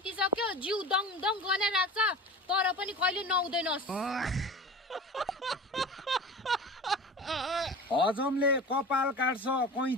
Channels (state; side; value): normal; both; correlation 0.35